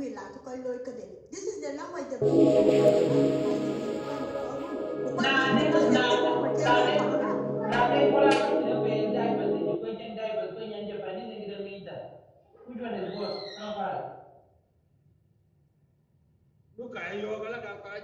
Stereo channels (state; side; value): identical; both; correlation 1.00